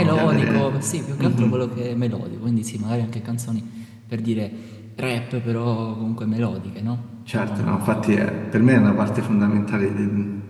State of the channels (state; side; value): identical; both; correlation 1.00